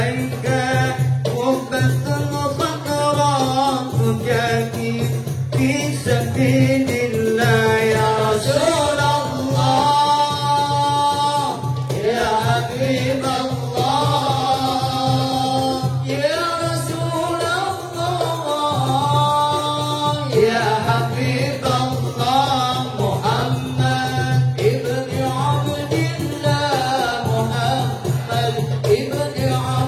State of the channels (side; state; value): both; identical; correlation 1.00